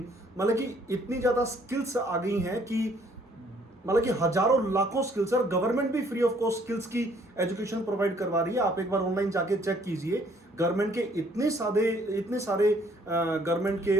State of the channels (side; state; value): both; normal; correlation 0.62